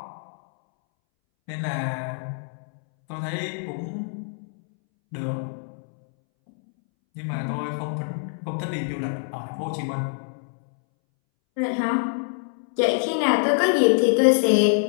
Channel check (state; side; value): silent; right; 62 dB below the other